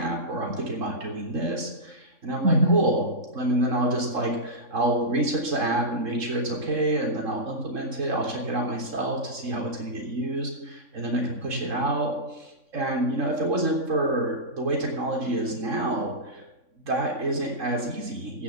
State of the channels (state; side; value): late; left; 3.7 ms